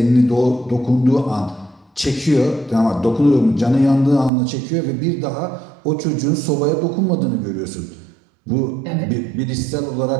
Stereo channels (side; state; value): left; drops out; at 4.3 s